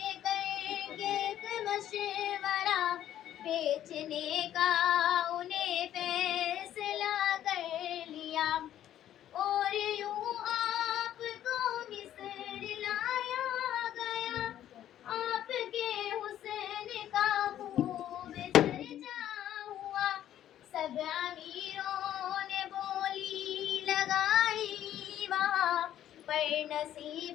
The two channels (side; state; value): right; quieter; 11.6 dB